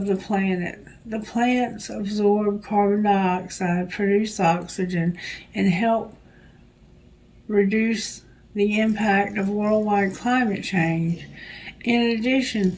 the planet. The plants absorb carbon dioxide, produce oxygen, and help reduce the impact of worldwide climate change. In addition,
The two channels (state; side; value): identical; both; correlation 1.00